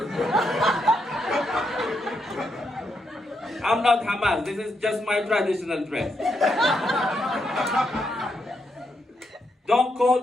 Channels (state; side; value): normal; both; correlation 0.80